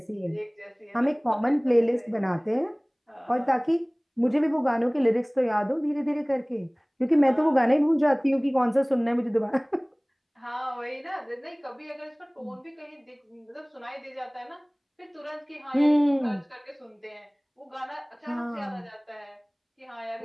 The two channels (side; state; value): both; identical; correlation 1.00